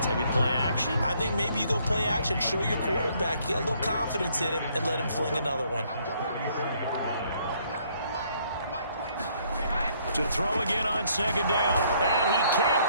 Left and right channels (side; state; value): both; inverted; correlation -0.66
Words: Maybe play action? I think maybe you go play action, show your quarterback, you get a little confidence in him, and let him fling another one. To throw again on second down. And he